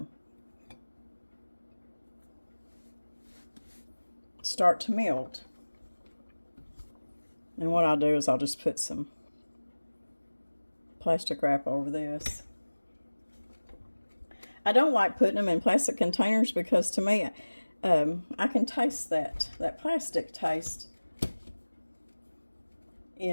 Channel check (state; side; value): inverted; both; correlation -1.00